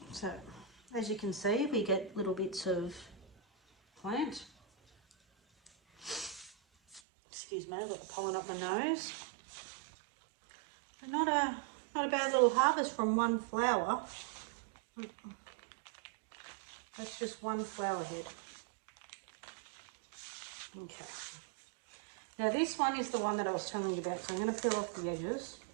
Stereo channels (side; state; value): left; drops out; at 7.0 s